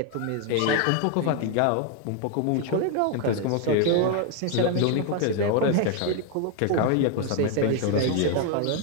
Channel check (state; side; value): different; both; correlation 0.01